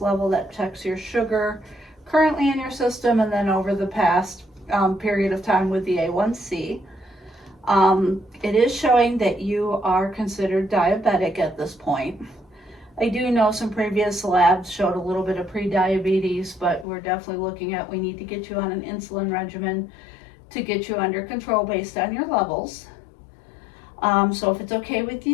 that checks your sugar currently in your system and then over the past period of time with the A1C. It is showing that you are considered diabetic at this point. I do know some previous labs showed a little bit of pre-diabetes, but we're definitely looking at, we need to get you on an insulin regimen to get you under control based on your levels. So if it's okay with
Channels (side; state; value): right; drops out; at 16.9 s